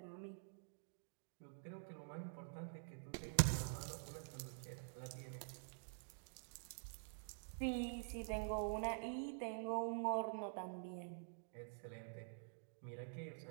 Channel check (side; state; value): left; silent; digital silence